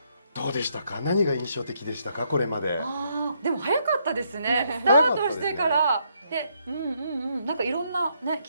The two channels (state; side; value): inverted; both; correlation -0.74